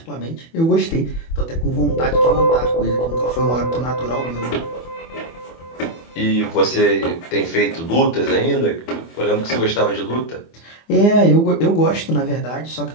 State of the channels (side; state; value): right; late; 24 ms